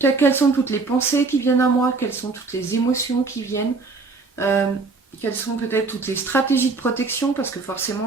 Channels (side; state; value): left; quieter; 4.0 dB